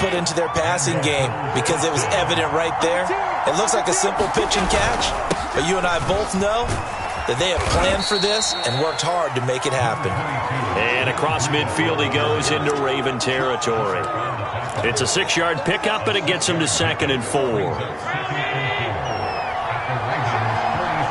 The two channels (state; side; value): identical; both; correlation 1.00